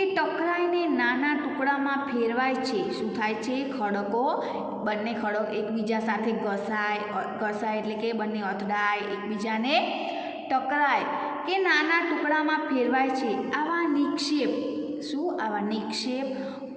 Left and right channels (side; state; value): both; identical; correlation 1.00